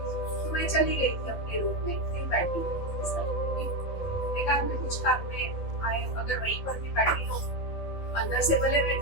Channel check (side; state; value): right; late; 12 ms